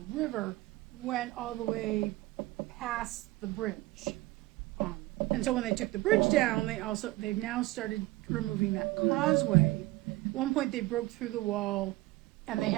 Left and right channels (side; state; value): left; quieter; 19.4 dB